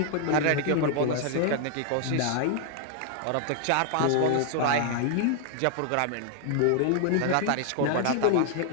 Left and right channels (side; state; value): both; different; correlation 0.00